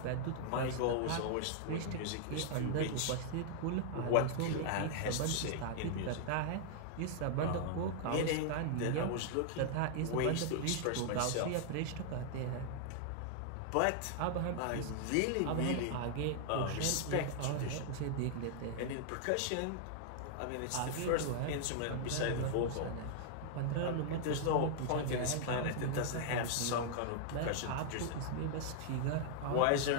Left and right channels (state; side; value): different; both; correlation -0.01